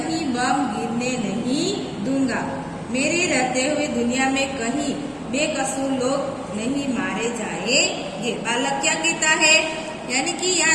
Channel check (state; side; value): identical; both; correlation 1.00